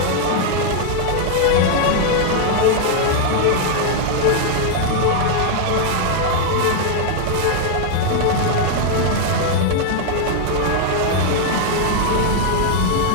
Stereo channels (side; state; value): both; different; correlation 0.00